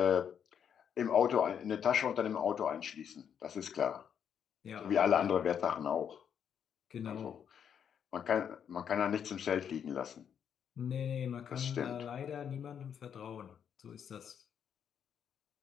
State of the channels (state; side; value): quieter; right; 8.2 dB